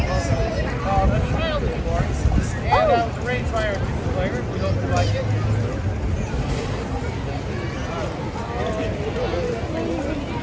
Called A Child is Born. And it was arranged by our two players. We hope you like it.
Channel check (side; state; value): both; identical; correlation 1.00